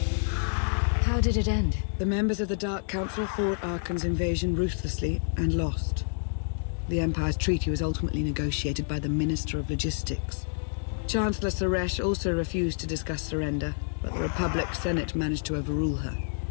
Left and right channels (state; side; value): silent; right; digital silence